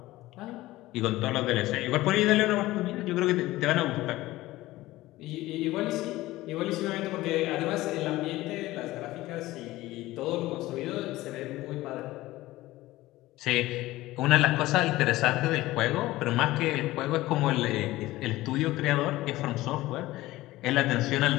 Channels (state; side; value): quieter; right; 17.5 dB